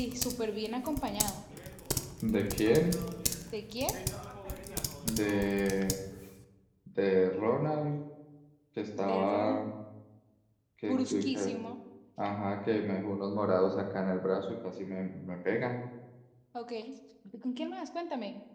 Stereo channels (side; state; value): both; identical; correlation 1.00